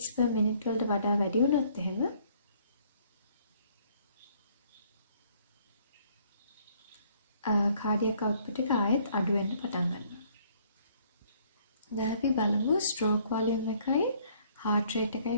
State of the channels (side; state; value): both; inverted; correlation -0.63